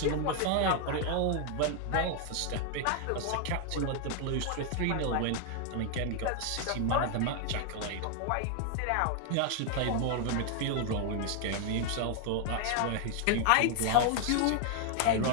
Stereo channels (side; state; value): both; different; correlation 0.00